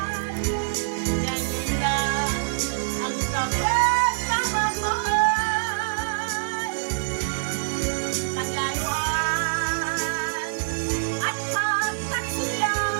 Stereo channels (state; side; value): silent; left; digital silence